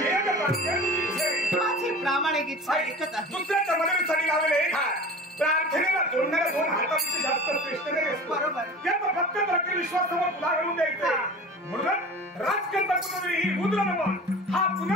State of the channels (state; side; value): normal; both; correlation 0.37